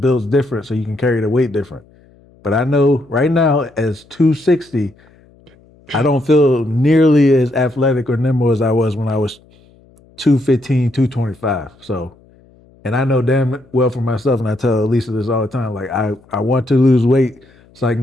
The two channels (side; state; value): left; noise; hum, 29 dB below the sound